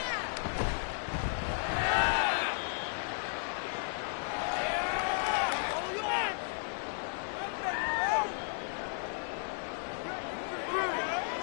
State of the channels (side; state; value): right; silent; 55 dB below the other